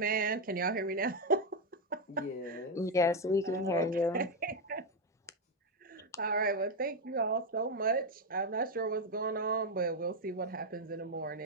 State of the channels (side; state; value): both; normal; correlation 0.05